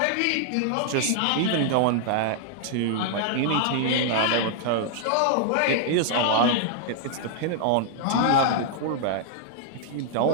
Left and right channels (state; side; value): different; both; correlation -0.01